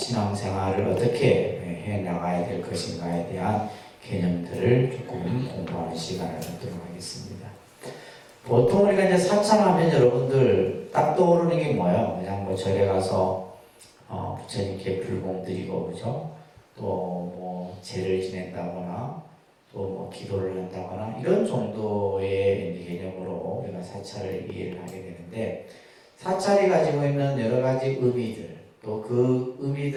어떻게 해 나가야 될 것인가에 대한 개념들을 조금 공부하는 시간을 갖도록 하겠습니다. 보통 우리가 이제 사찰하면 여러분들 딱 떠오르는 게 뭐예요? 그냥 뭐 절에 가서 부처님께 불공 드리고, 그죠? 또 뭐 제를 지낸다거나 또 뭐 기도를 한다거나 이런 정도의 개념으로 우리가 사찰을 이해를 하게 되는데, 사찰이 가지고 있는 여러 가지 의미들, 또 그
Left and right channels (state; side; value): identical; both; correlation 1.00